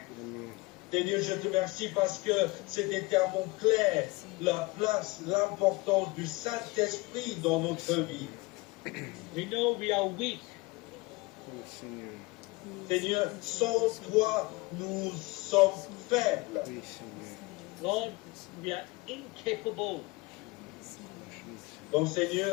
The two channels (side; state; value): right; quieter; 23.5 dB